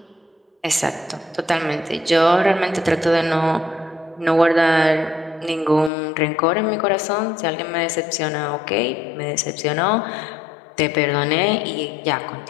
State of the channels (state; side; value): drops out; right; at 5.9 s